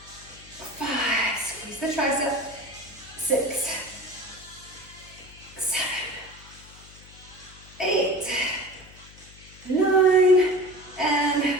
5. Squeeze the tricep. 6. 7. 8. 9. And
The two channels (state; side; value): noise; left; hum, 21 dB below the sound